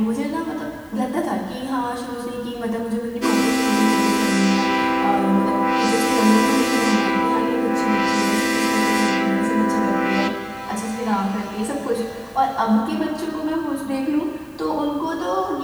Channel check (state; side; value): identical; both; correlation 1.00